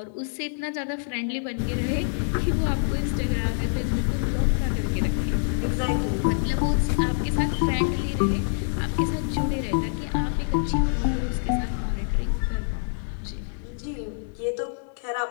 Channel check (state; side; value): silent; right; digital silence